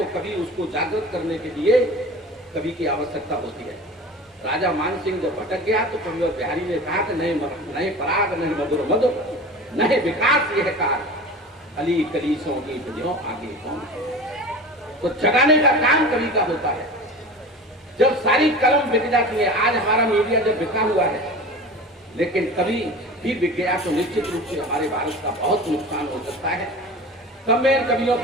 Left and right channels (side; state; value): both; normal; correlation 0.35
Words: कभी उसको जागृत करने के लिए कवि की आवश्यकता होती है। राजा मान सिंह जब भटक गया तो कविवर बिहारी ने कहा कि नए पराग, नए मधुर मधुर, नए विकास यह कार, अली कलीसों की जो आगे कौन है। तो जगाने का काम कवि का होता है। जब सारी कलम बिक जाती है, आज हमारा मीडिया जब बिका हुआ है, लेकिन कभी भी बिक गया तो निश्चित रूप से हमारे भारत का बहुत नुकसान हो सकता है। तब मैं कवियों